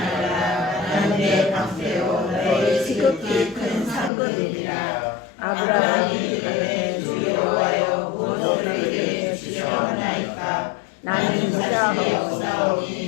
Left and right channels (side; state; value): right; drops out; at 4.1 s